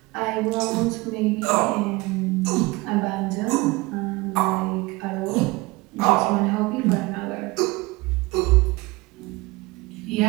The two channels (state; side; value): quieter; left; 22.9 dB